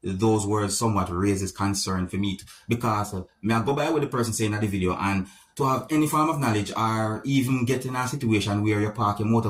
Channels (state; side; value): identical; both; correlation 1.00